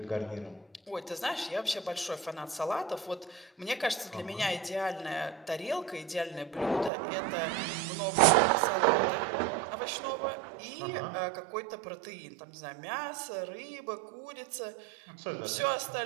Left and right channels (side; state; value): left; drops out; at 6.9 s